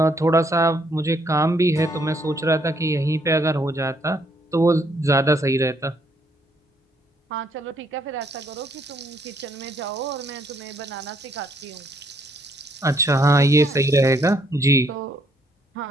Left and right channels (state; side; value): normal; both; correlation 0.69